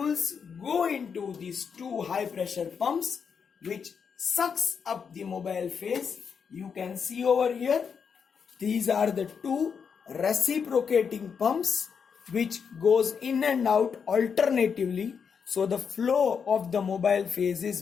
go into these two high pressure pumps which sucks up the mobile phase. You can see over here, these are the two reciprocating pumps which goes in and out alternatively, so the flow of the mobile phase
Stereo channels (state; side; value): quieter; right; 6.5 dB